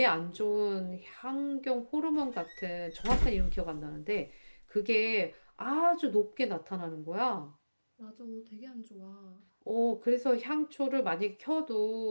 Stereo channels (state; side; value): inverted; both; correlation -1.00